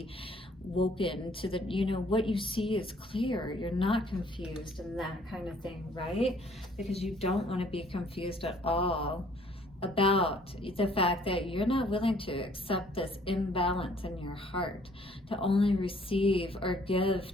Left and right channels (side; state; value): both; normal; correlation 0.60